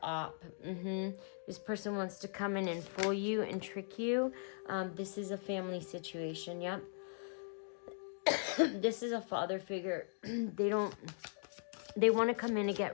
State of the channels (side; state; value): right; silent; digital silence